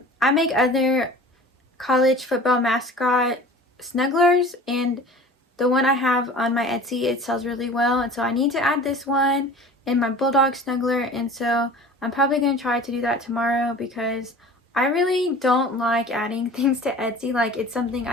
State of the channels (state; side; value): normal; both; correlation 0.42